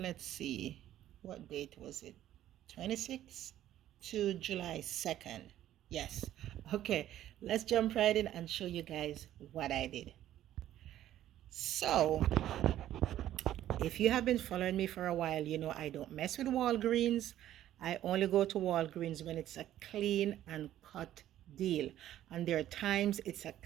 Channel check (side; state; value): left; quieter; 12.5 dB